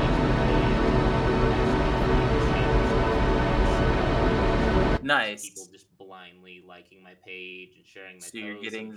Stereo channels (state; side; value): identical; both; correlation 1.00